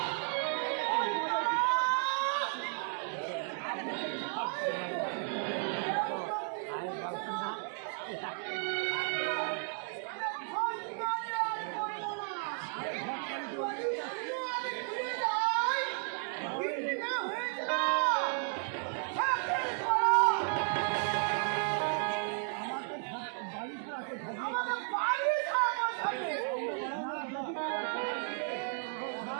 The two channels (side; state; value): left; silent; 55 dB below the other